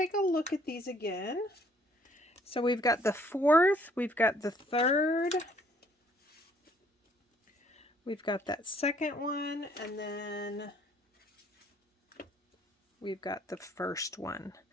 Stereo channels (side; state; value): both; normal; correlation 0.62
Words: a look at these again. So we've got the 4th, we've got the 3rd, we've got that 2nd one, and then we've got the first one.